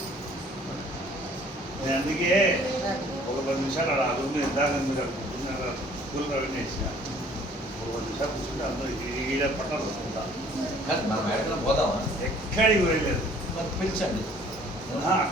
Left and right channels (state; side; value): normal; both; correlation 0.56